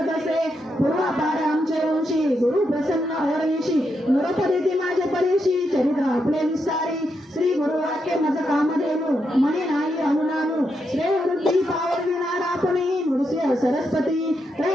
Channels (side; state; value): both; normal; correlation 0.82